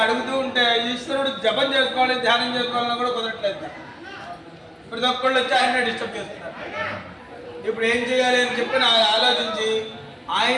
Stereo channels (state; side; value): identical; both; correlation 1.00